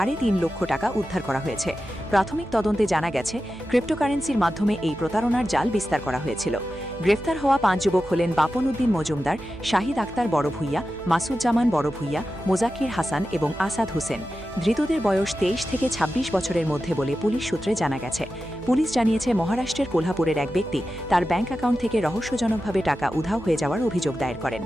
লক্ষ টাকা উদ্ধার করা হয়েছে। প্রাথমিক তদন্তে জানা গেছে, ক্রিপ্টোকারেন্সির মাধ্যমে এই প্রতারণার জাল বিস্তার করা হয়েছিল। গ্রেফতার হওয়া ৫ যুবক হলেন বাপন উদ্দিন মজুমদার, শাহিদ আক্তার বড় ভূঁইয়া, মাসুজ্জামান বড় ভূঁইয়া, মোজাক্কির হাসান এবং আসাদ হোসেন। ধৃতদের বয়স ২৩ থেকে ২৬ বছরের মধ্যে বলে পুলিশ সূত্রে জানা গেছে। পুলিশ জানিয়েছে, মহারাষ্ট্রের কোলহাপুরের এক ব্যক্তি তার ব্যাংক অ্যাকাউন্ট থেকে রহস্যজনকভাবে টাকা উধাও হয়ে যাওয়ার অভিযোগ দায়ের করেন।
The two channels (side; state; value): right; noise; hum, 19 dB below the sound